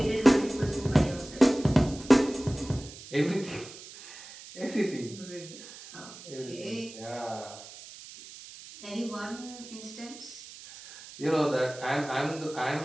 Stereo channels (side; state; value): right; noise; hiss, 16 dB below the sound